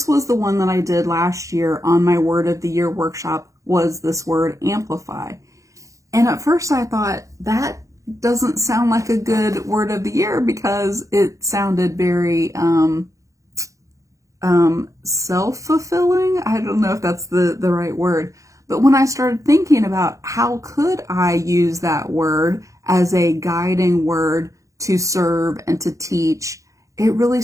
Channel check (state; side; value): late; left; 0.15 ms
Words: was the one that I did last year on my Word of the Year workshop, was this word amplify. And at first I thought, that doesn't sound like a good word of the year because it sounded very self-fulfilling. I don't know if that's the right word. But when I started thinking about how could I use that word as a guiding word to serve and to teach, it really